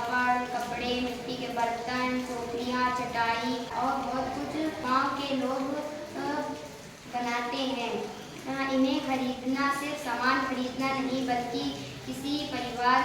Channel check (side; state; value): both; identical; correlation 1.00